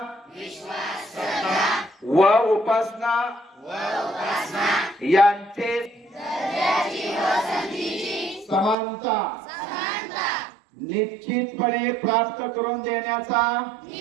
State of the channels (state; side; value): drops out; left; at 8.8 s